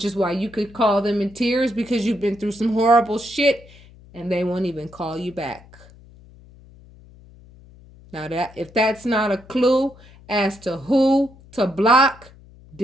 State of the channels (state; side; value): noise; left; hum, 23 dB below the sound